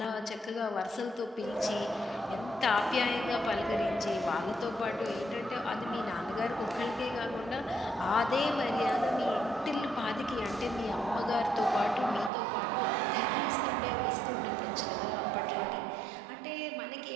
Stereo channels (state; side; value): drops out; left; at 12.3 s